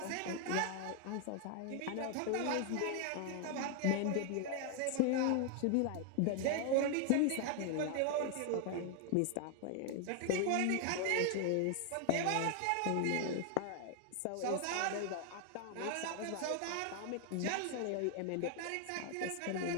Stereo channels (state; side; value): different; both; correlation 0.00